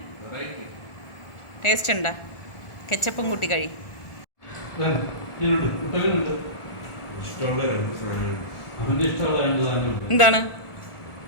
ടേസ്റ്റ് ഉണ്ടോ? കെച്ചപ്പും കൂട്ടി കഴി. എന്താണ്?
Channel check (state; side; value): late; right; 1.4 ms